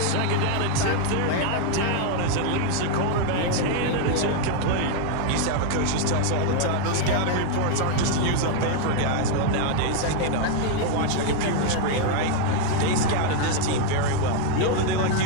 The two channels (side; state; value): both; different; correlation 0.01